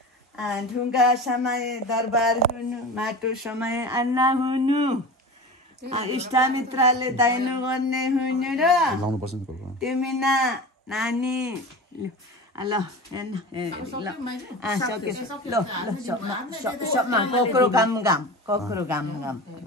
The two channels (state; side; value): normal; both; correlation 0.31